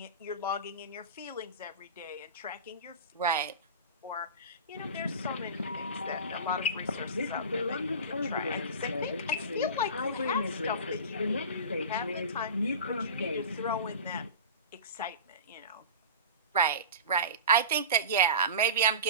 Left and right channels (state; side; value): inverted; both; correlation -0.31